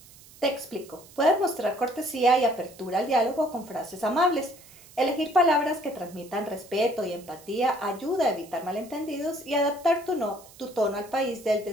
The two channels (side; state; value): right; noise; hiss, 22 dB below the sound